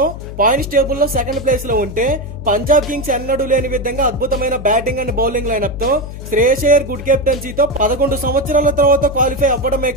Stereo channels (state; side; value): noise; left; hum, 11 dB below the sound